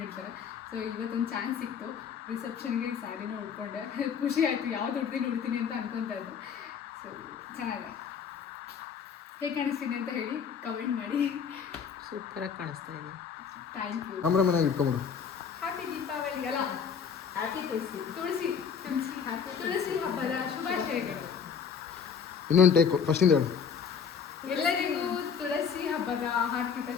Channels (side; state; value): right; quieter; 6.8 dB